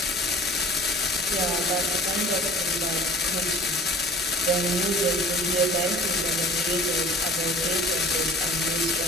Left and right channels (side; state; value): both; normal; correlation 0.45